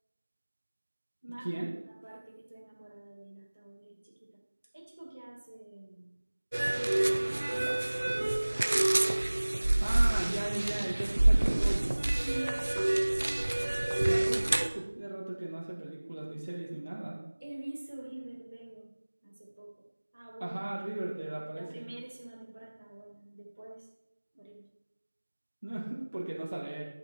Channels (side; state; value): both; inverted; correlation -1.00